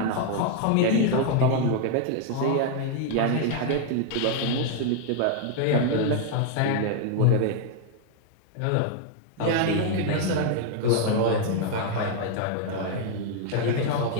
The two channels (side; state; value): both; different; correlation 0.00